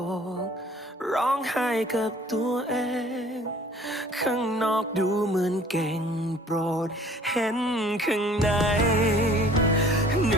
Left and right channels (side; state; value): both; normal; correlation 0.52